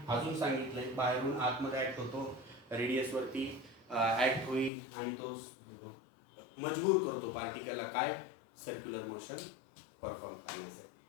अजून सांगितलंय बाहेरून आतमध्ये ऍक्ट होतो, रेडियस वरती ऍक्ट होईल आणि तो मजबूर करतो पार्टिकलला काय? सर्क्युलर मोशन परफॉर्म करण्यासाठी.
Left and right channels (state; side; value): drops out; right; at 4.7 s